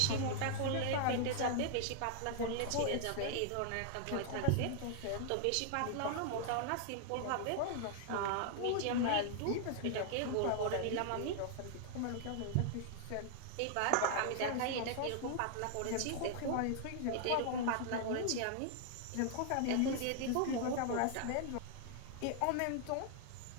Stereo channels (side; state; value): both; different; correlation 0.00